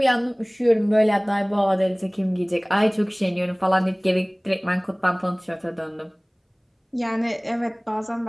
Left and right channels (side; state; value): both; identical; correlation 1.00